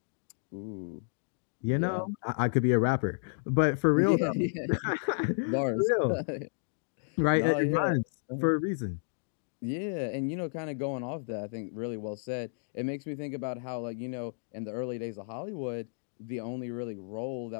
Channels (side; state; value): right; silent; digital silence